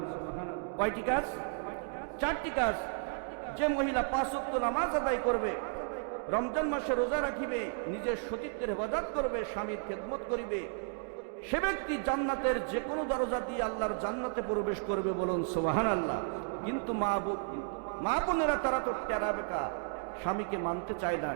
কয়টি কাজ? 4টি কাজ। যে মহিলা 5 ওয়াক্ত নামাজ আদায় করবে, রমজান মাসে রোজা রাখিবে, নিজের সতীত্বের হেফাজত করবে, স্বামীর খেদমত করিবে, সে ব্যক্তি জান্নাতের যে কোনো দরজা দিয়ে আল্লাহর জান্নাতে প্রবেশ করবে। বলুন সুবহানাল্লাহ। কিন্তু মা বোনেরা তারা তো টেরা বেকা, স্বামীকে মানতে চায় না।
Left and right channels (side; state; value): left; silent; 55 dB below the other